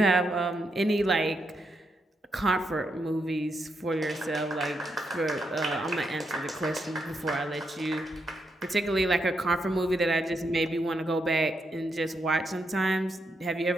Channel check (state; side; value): normal; both; correlation 0.81